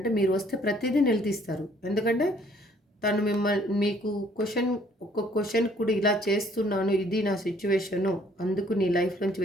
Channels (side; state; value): both; normal; correlation 0.61